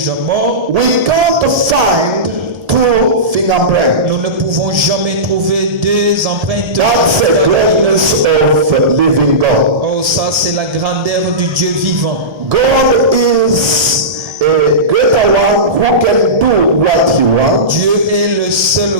morts, we can't find two fingerprints. nous ne pouvons jamais trouver deux empreintes. That's the greatness of living God. Oh, ça c'est la grandeur du Dieu vivant. God is a greater one who can do what he wants, Dieu est le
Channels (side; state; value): left; late; 1.3 ms